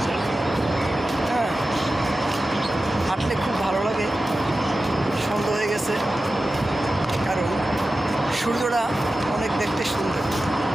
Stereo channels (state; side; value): normal; both; correlation 0.94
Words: হ্যাঁ, হাঁটলে খুব ভালো লাগে। সন্ধ্যা হয়ে গেছে, কারণ সূর্যটা অনেক দেখতে সুন্দর।